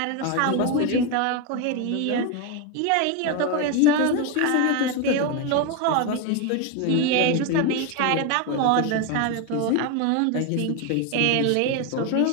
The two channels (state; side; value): different; both; correlation 0.02